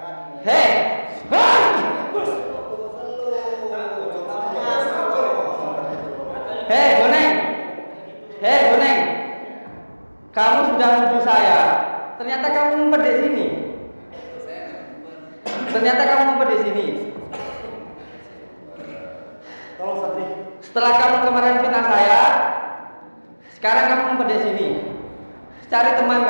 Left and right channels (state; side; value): inverted; both; correlation -1.00